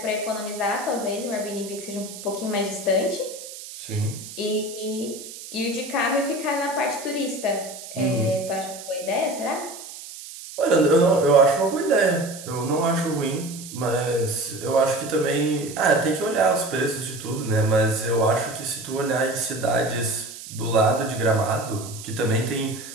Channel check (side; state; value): right; noise; hiss, 13 dB below the sound